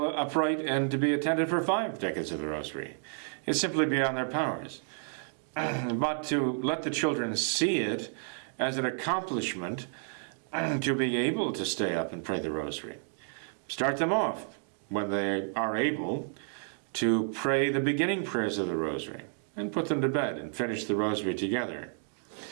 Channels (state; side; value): silent; left; 57 dB below the other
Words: upright and to be attentive for 5 decades of the rosary. It's simply beyond their powers. But to let the children see it as an accomplishment to be able to stay up and pray the rosary. Start them off when they are able to pray the beginning prayers of the rosary and put them to bed and finish the rosary together